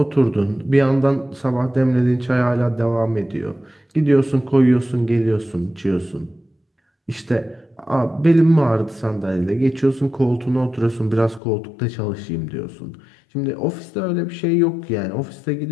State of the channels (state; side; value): drops out; right; at 11.4 s